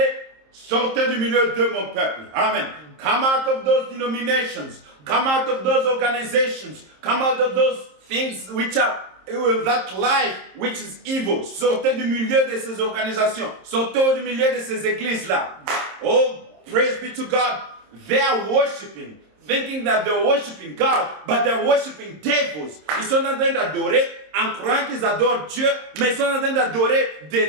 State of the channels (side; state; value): left; late; 26 ms